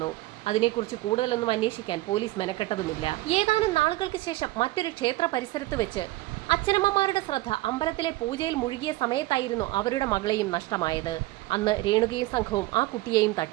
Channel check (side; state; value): left; quieter; 18.8 dB